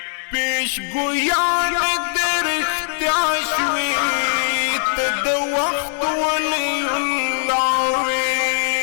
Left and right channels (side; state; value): right; silent; 66 dB below the other